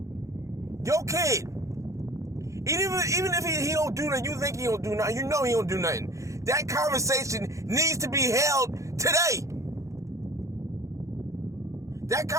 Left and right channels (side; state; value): left; late; 0.15 ms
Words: Your kid. Even if he don't do nothing, you think he don't do nothing, you know he don't do nothing. That conversation needs to be held today. That